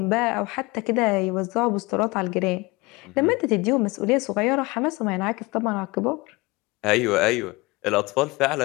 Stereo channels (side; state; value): right; quieter; 23.7 dB